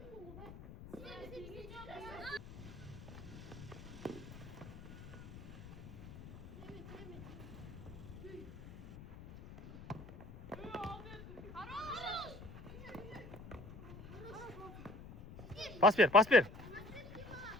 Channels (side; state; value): left; noise; rumble, 14 dB below the sound